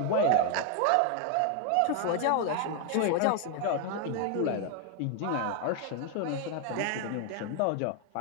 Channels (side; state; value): both; different; correlation 0.00